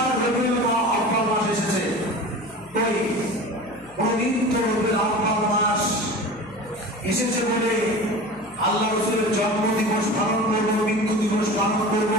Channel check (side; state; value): left; noise; hum, 25 dB below the sound